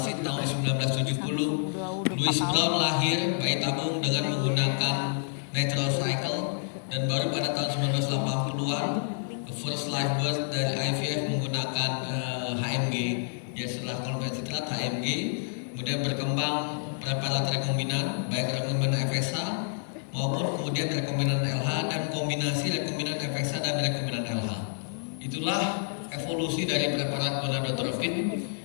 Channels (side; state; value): right; silent; 57 dB below the other